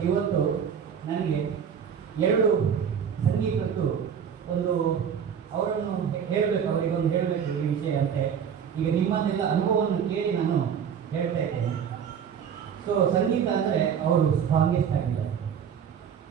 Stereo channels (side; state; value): left; quieter; 7.8 dB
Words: ಇವತ್ತು ನನಗೆ ಎರಡು ಸಂಗೀತದ್ದು ಒಂದು ಅವರನ್ನು ಹೇಳಬೇಕು, ಅವರಿಗೊಂದು ಹೇಳಬೇಕು ಈ ವಿಷಯ ಅಂತೆ. ಈಗ ನಿಮ್ಮನ್ನೆಲ್ಲ ಅನುಭವವನ್ನು ಕೇಳಿ ನಾನು ಹೇಳ್ತಾ ಇದ್ದೇನೆ. ಸೊ ಸಂಗೀತ ಅಂದರೆ ಅವರು ಸ್ಟ್ರಾಂಗೆಸ್ಟ್ ಆಗಿದ್ದಾರೆ.